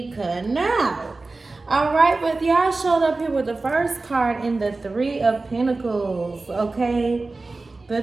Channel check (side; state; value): left; quieter; 3.5 dB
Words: cutting out. Alright, but y'all showed up here with the first card in the Three of Pentacles, okay? The